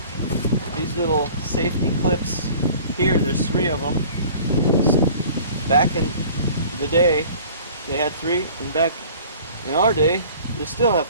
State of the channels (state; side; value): inverted; both; correlation -0.47